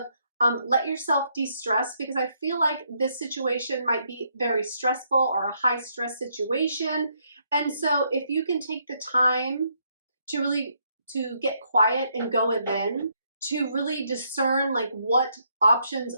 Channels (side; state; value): both; inverted; correlation -0.74